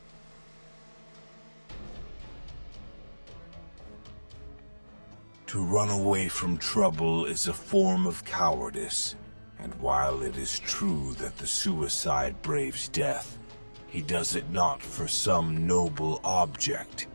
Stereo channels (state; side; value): inverted; both; correlation -1.00